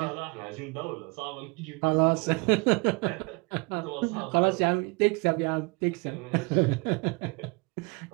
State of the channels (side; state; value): left; quieter; 29.7 dB